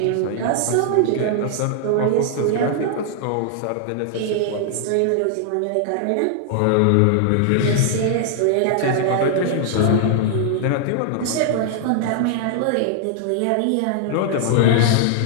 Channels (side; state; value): both; different; correlation -0.01